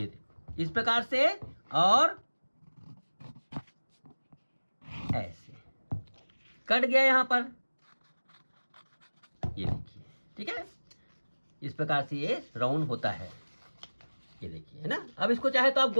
देखो इस प्रकार से, और ऐसे कट गया यहां पर, ये देखिए, ठीक है। इस प्रकार से ये राउंड होता है, ये देखिए, है ना। अब इसको चाहे तो आप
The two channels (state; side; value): inverted; both; correlation -1.00